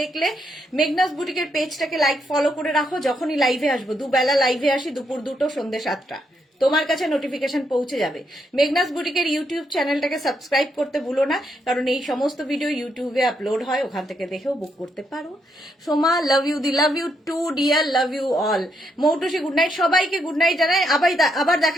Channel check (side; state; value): both; normal; correlation 0.77